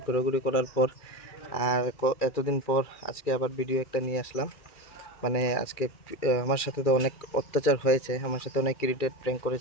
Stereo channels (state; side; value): late; right; 2.4 ms